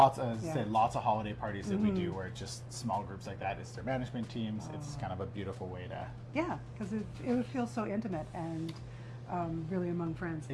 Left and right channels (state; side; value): identical; both; correlation 1.00